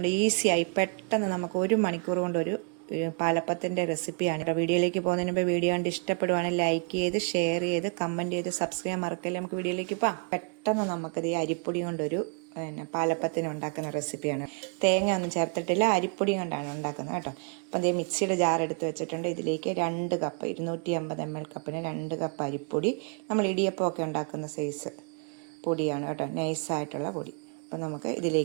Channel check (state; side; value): quieter; left; 38.5 dB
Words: ഈസിയായി പെട്ടെന്ന് നമുക്ക് 1 മണിക്കൂർ കൊണ്ട് ഒരു പാലപ്പത്തിൻ്റെ റെസിപ്പിയാണ് കേട്ടോ. വീഡിയോയിലേക്ക് പോകുന്നതിന് മുമ്പ് വീഡിയോ കണ്ട് ഇഷ്ടപ്പെടുവാണെങ്കിൽ ലൈക്ക് ചെയ്ത്, ഷെയർ ചെയ്ത്, കമൻറ്റ് ചെയ്ത്, സബ്സ്ക്രൈബ് മറക്കല്ലേ. നമുക്ക് വീഡിയോയിലേക്ക് പോകാം. പെട്ടെന്ന് നമുക്കത് ഈ അരിപ്പൊടി കൊണ്ടൊരു പാലപ്പത്തിന് ഉണ്ടാക്കുന്ന റെസിപ്പിയാണ്. തേങ്ങ ഒന്നും ചേർത്തിട്ടില്ല, അരിപ്പൊടി കൊണ്ടാണ് ഉണ്ടാക്കുന്നത് കേട്ടോ. അപ്പം അതേ മിക്സിയുടെ ജാർ എടുത്ത് വെച്ചിട്ടുണ്ട്. ഇതിലേക്ക് 2 കപ്പ് 250 ml കപ്പിന് 2 കപ്പ് അരിപ്പൊടി. നമ്മൾ ഇടിയപ്പമൊക്കെ ഉണ്ടാക്കുന്ന സൈസ് പൊടിയാണ് കേട്ടോ, നൈസായിട്ടുള്ള പൊടി. അപ്പം നമുക്ക്